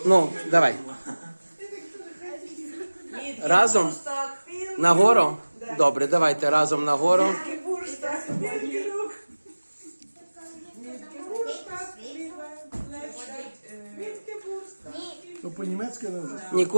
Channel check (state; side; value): inverted; both; correlation -1.00